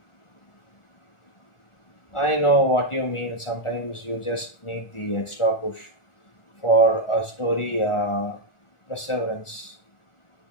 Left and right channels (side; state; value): right; late; 1.4 ms